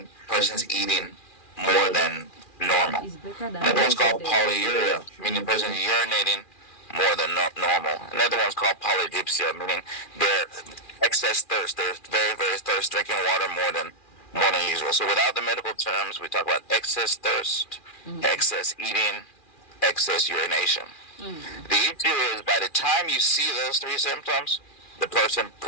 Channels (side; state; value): right; late; 2.4 ms